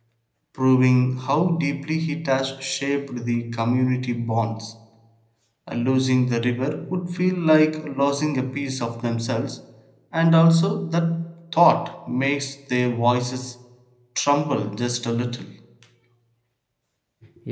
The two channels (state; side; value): identical; both; correlation 1.00